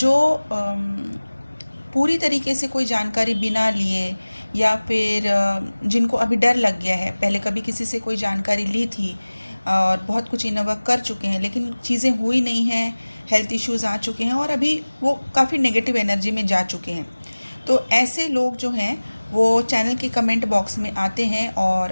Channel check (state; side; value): inverted; both; correlation -1.00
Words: पूरी तरीके से कोई जानकारी बिना लिए या फिर जिनको अभी डर लग गया है, पहले कभी किसी से कोई जानकारी ली थी और बहुत कुछ इन्वॉल्व कर चुके हैं लेकिन चीज़ें हुई नहीं हैं, हेल्थ इश्यूज़ आ चुके हैं और अभी वो काफ़ी नेगेटिव एनर्जी में जा चुके हैं। तो ऐसे लोग जो हैं वो चैनल के कमेंट बॉक्स में आते हैं